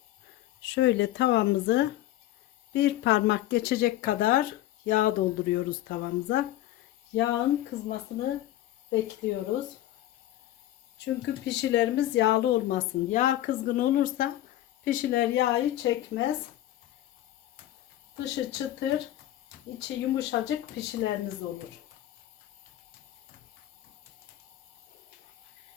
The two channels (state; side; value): quieter; right; 14.1 dB